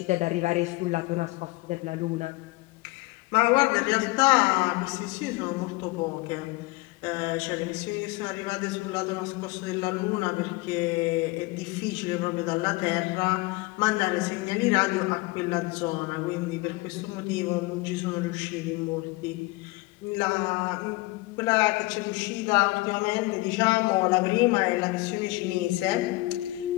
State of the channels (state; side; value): quieter; right; 22.3 dB